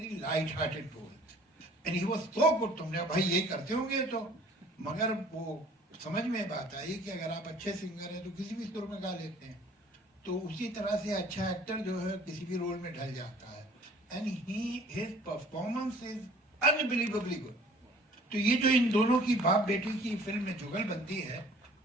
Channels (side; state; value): both; normal; correlation 0.52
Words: light hearted roles and he was so good. तुमने भाई ये करते होंगे तो, मगर वो समझ में बात आई कि अगर आप अच्छे सिंगर हैं तो किसी भी सुर में गा लेते हैं. तो उसी तरह से अच्छा एक्टर जो है किसी भी रोल में ढल जाता है. And his performance is unbelievably good. तो ये जो इन दोनों की बाप बेटी की फिल्म में जुगलबंदी है,